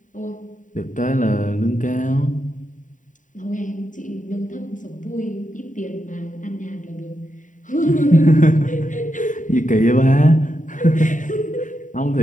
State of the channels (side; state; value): right; late; 0.37 ms